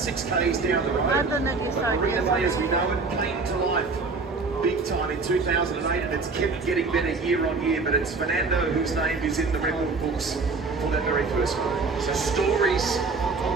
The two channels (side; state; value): left; quieter; 4.2 dB